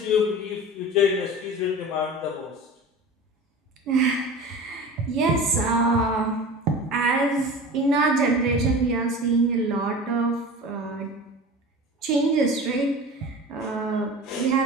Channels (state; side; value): normal; both; correlation 0.35